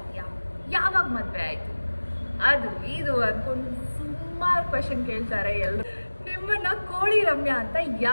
ಯಾವಾಗ ಮದುವೆ ಆಯಿತು, ಅದು ಇದು ಅಂದ್ಕೊಂಡು ಸುಮಾರು ಕ್ವೆಶನ್ ಕೇಳ್ತಾರೆ ಎಲ್ಲರೂ. ನಿಮ್ಮನ್ನ ಕೋಳಿ ರಮ್ಯಾ ಅಂತ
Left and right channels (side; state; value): both; inverted; correlation -1.00